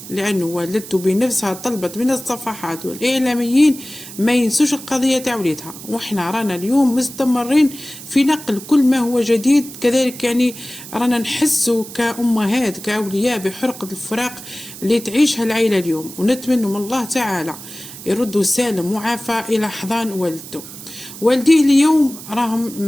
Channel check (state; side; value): noise; right; hiss, 14 dB below the sound